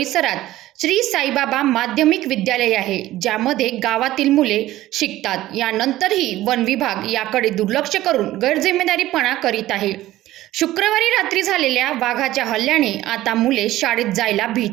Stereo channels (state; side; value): quieter; left; 15.5 dB